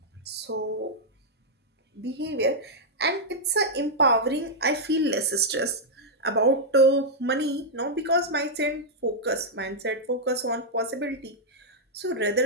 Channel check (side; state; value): both; normal; correlation -0.06